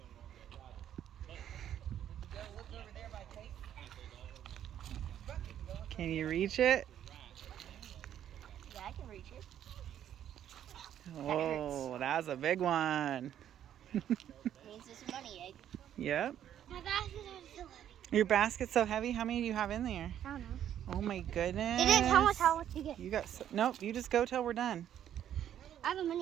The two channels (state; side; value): quieter; left; 10.4 dB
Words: Go look over there by Kate. Can you reach it? Yeah, I can reach it. Oh, that's a big one. Means it's a money egg. Yep. My basket is so heavy. Your basket's so heavy. How many do you have in there? I don't know. Oh my goodness. It didn't tell us how much to get. You got nope. You just go till we're done. I have a